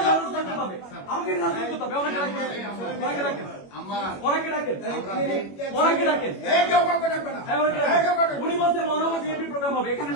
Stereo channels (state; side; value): late; right; 21 ms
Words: রাখতে হবে, আমাকে রাখতে হবে। অনেকে ডাকেন উনি বলছে মহানগর বিএনপি প্রোগ্রাম হবে, এখানে